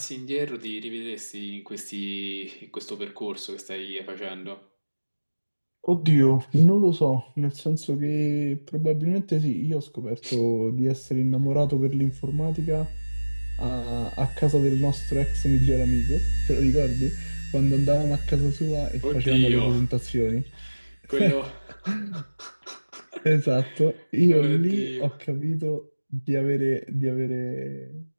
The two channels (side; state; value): both; inverted; correlation -1.00